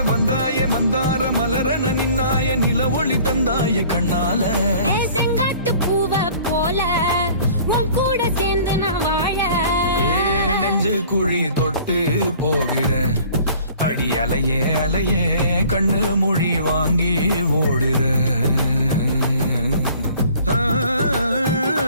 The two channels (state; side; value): inverted; both; correlation -0.51